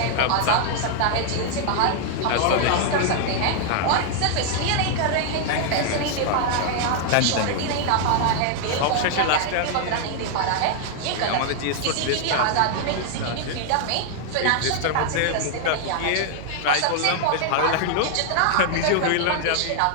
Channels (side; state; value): both; different; correlation 0.00